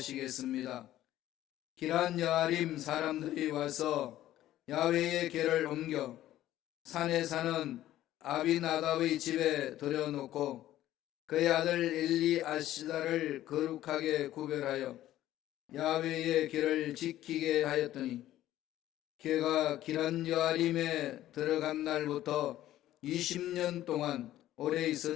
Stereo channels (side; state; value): right; quieter; 13.7 dB